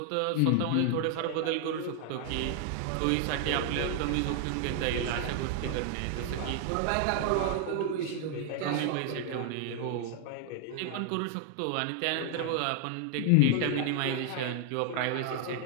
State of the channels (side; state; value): both; different; correlation 0.00